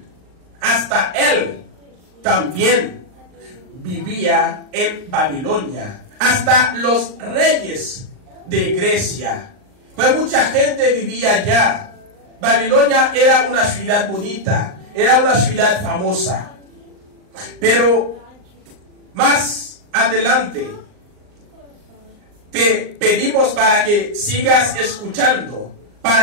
hasta él también vivía en Babilonia, hasta los reyes de Grecia, pues mucha gente vivía allá. Babilonia era una ciudad bonita, era una ciudad famosa, pero más adelante te pedimos para que sigas escuchando,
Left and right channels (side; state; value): left; late; 39 ms